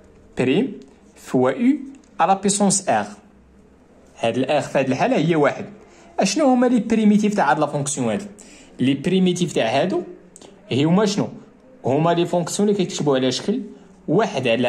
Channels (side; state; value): both; identical; correlation 1.00